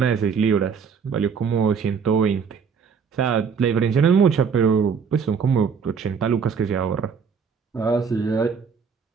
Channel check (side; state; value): left; quieter; 6.3 dB